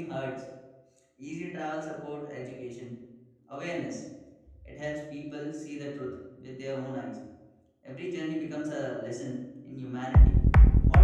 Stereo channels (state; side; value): identical; both; correlation 1.00